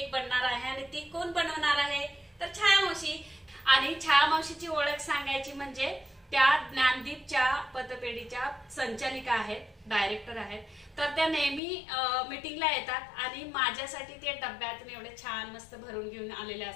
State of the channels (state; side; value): drops out; right; at 11.6 s